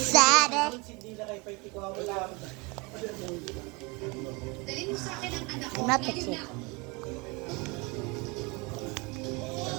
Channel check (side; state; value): left; quieter; 27.7 dB